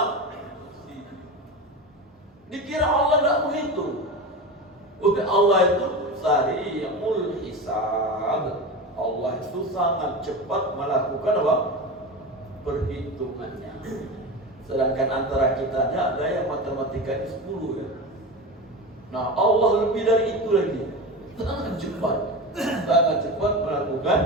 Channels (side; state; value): both; normal; correlation 0.25